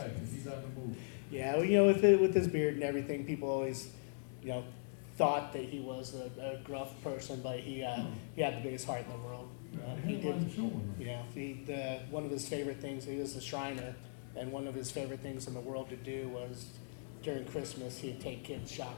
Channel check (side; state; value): right; silent; digital silence